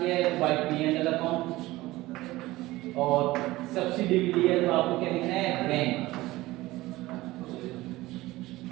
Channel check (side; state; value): left; quieter; 18.5 dB